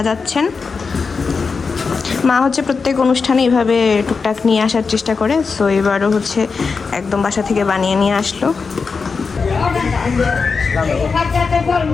মা হচ্ছে প্রত্যেক অনুষ্ঠানে এইভাবে টুকটাক নিয়ে আসার চেষ্টা করে। সো এবারও হচ্ছে একদম বাসা থেকে বানিয়ে নিয়ে আসলো।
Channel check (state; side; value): quieter; right; 4.9 dB